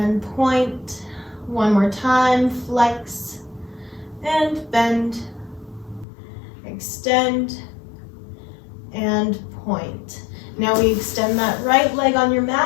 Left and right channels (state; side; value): drops out; right; at 6.1 s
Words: point. One more time, flex and bend, extend and point. Now we extend that right leg on your